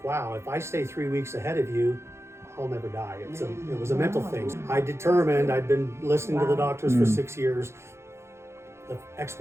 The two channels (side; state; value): left; late; 0.13 ms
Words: wow, if I stay 3 weeks ahead of you, I'll never die. It was a mental thing. I determined, I'd been listening to the doctors for 6 years. The